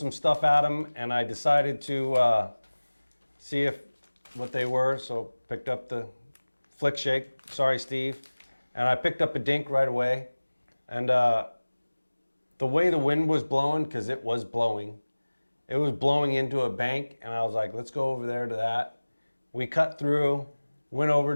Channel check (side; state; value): both; inverted; correlation -1.00